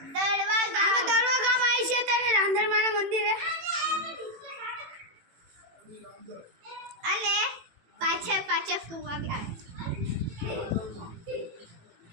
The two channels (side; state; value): left; late; 18 ms